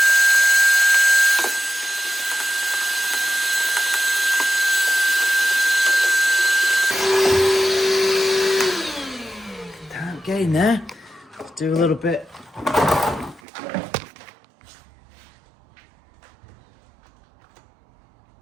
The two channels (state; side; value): drops out; left; at 13.4 s